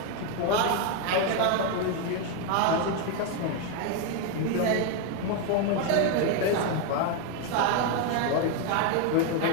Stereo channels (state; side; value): different; both; correlation 0.01